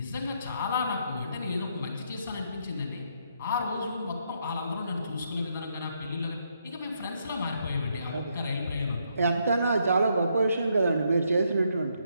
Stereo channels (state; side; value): inverted; both; correlation -0.76